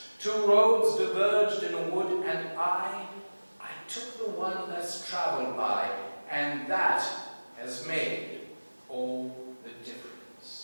2 roads diverged in a wood, and I took the one less traveled by, and that has made all the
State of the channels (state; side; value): inverted; both; correlation -1.00